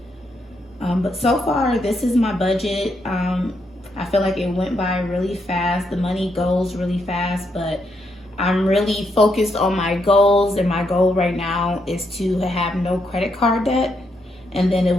But so far, this is my budget. I feel like it went by really fast. The money goes really fast, but I'm really focused on my goals, and my goal right now is to have no credit card debt, and then it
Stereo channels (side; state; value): both; normal; correlation 0.78